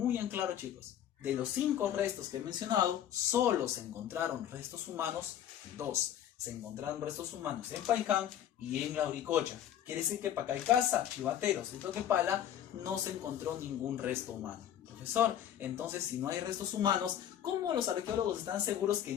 en claro, chicos. De los 5 restos que he mencionado, solo se encontraron restos humanos 2. Se encontraron restos humanos en Paiján y en Lauricocha. Quiere decir que Pacaycasa, Chivateros y Toquepala no se encontró ningún resto humano. Profesor, entonces si no hay restos humanos, ¿cómo los arqueólogos están seguros que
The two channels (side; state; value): right; quieter; 10.5 dB